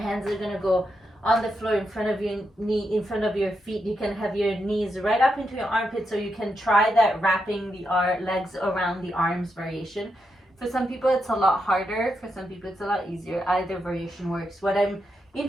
are gonna go on the floor in front of your knee, in front of your feet. You can have your knees right up into your armpits, so you can try that wrapping the legs around the arms variation. For some people it's a lot harder, for some people it's a lot easier. Either variation works. What I'm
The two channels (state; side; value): normal; both; correlation 0.84